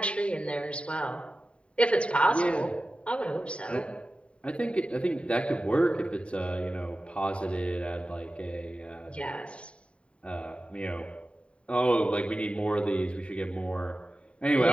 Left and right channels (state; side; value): late; right; 0.060 ms